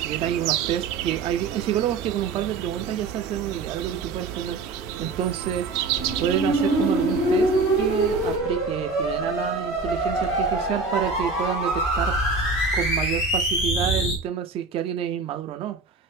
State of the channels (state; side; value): quieter; left; 4.1 dB